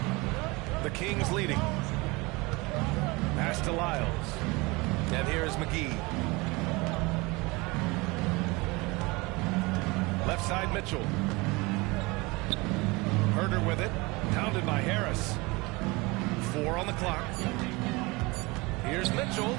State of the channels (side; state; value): left; quieter; 24.5 dB